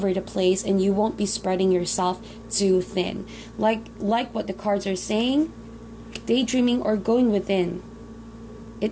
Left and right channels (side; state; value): both; identical; correlation 1.00